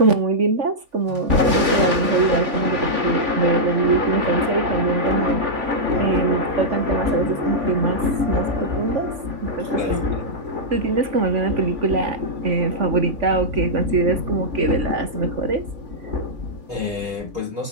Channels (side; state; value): left; late; 3.5 ms